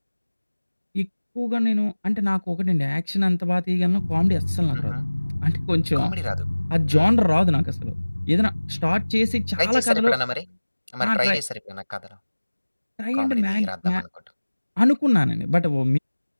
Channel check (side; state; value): both; inverted; correlation -1.00